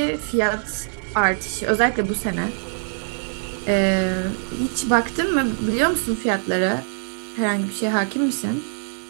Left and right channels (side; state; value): left; silent; 63 dB below the other